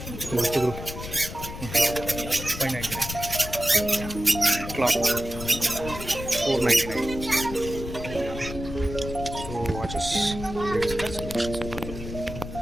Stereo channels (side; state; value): left; noise; rumble, 9 dB below the sound